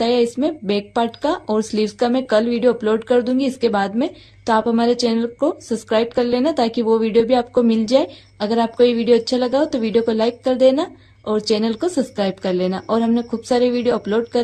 इसमें बैक पार्ट का और स्लीव्स का मैं कल वीडियो अपलोड कर दूंगी इसके बाद में। तो आप हमारे चैनल को सब्सक्राइब कर लेना ताकि वो वीडियो भी आपको मिल जाए। अगर आपको ये वीडियो अच्छा लगा हो तो वीडियो को लाइक कर देना और चैनल को सब्सक्राइब कर लेना। और हमने खूब सारे वीडियो अपलोड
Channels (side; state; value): both; identical; correlation 1.00